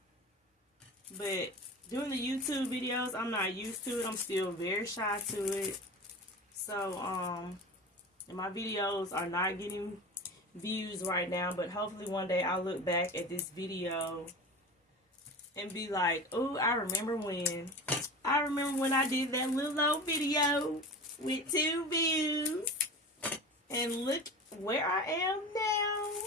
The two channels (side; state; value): both; normal; correlation 0.32